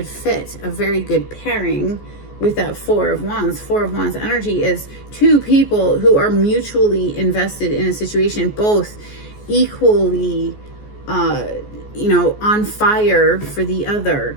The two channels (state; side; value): late; right; 14 ms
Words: fit, a very good pairing with that 4 of Wands. 4 of Wands energy is 2 people who are mutually invested in a situation, both equally on fire for the other,